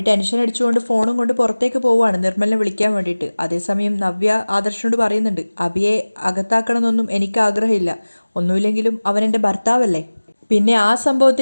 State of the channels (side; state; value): both; inverted; correlation -1.00